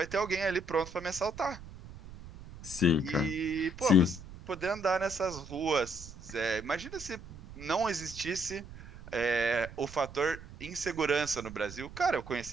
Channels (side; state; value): right; noise; rumble, 15 dB below the sound